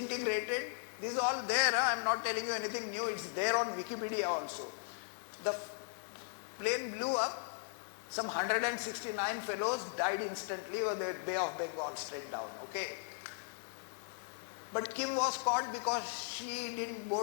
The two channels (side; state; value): right; silent; digital silence